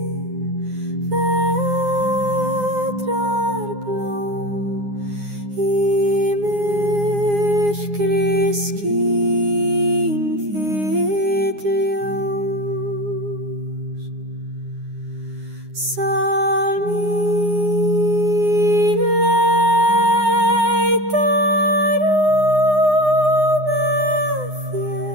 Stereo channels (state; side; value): late; left; 9.7 ms